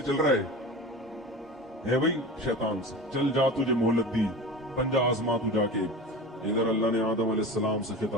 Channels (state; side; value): normal; both; correlation 0.32